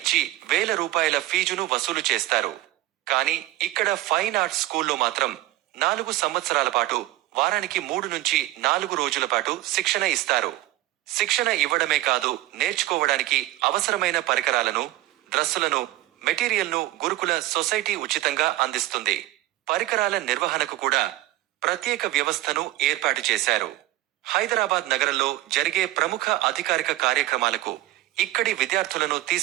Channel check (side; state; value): left; quieter; 16.3 dB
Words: ₹1000 ఫీజును వసూలు చేస్తారు. కానీ ఇక్కడ ఫైన్ ఆర్ట్స్ స్కూల్లో మాత్రం 4 సంవత్సరాల పాటు వారానికి 3 నుంచి 4 రోజుల పాటు శిక్షణ ఇస్తారు. శిక్షణ ఇవ్వడమే కాదు, నేర్చుకోవడానికి అవసరమైన పరికరాలను, డ్రస్సులను, మెటీరియల్ను గురుకుల సొసైటీ ఉచితంగా అందిస్తుంది. పరికరాల నిర్వహణకు కూడా ప్రత్యేక వ్యవస్థను ఏర్పాటు చేశారు. హైదరాబాద్ నగరంలో జరిగే ప్రముఖ అధికారిక కార్యక్రమాలకు ఇక్కడి విద్యార్థులను